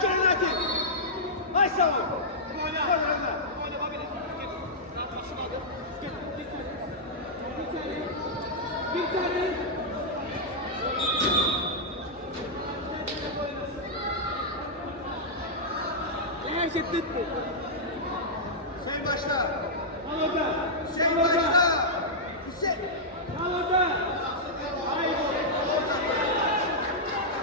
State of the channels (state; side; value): normal; both; correlation -0.09